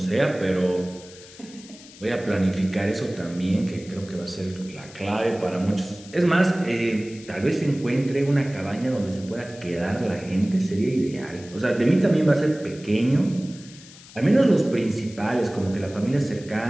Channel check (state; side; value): noise; left; hiss, 20 dB below the sound